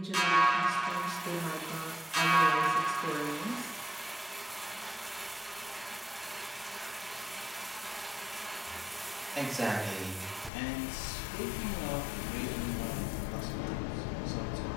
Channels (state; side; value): drops out; right; at 10.5 s